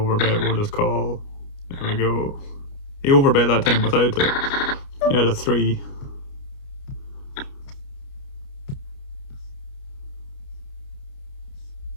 will just call. There we go. He overbet that time without it. He had a 3.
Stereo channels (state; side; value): late; right; 29 ms